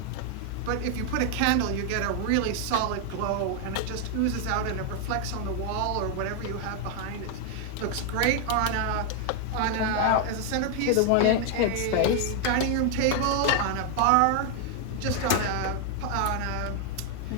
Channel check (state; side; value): different; both; correlation 0.00